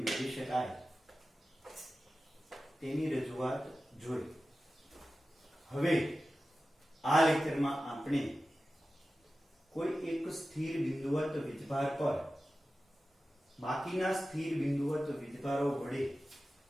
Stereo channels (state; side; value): normal; both; correlation 0.94